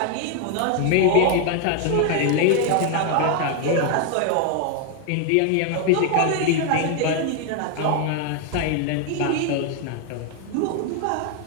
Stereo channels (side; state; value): both; different; correlation 0.01